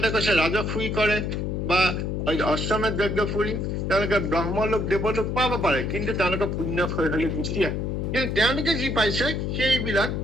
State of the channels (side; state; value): left; noise; hum, 1 dB below the sound